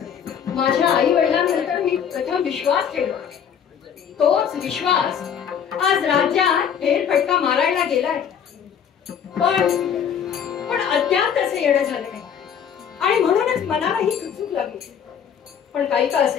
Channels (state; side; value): quieter; right; 8.1 dB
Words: माझ्या आई वडिलांनंतर मी प्रथम विश्वास ठेवला, तोच विश्वास आज राज्यात फेरफटका मारायला गेलाय. पण अद्याप तसे येणं झालं नाही आणि म्हणूनच मनाला ही चुकचूक लागली. पण काही का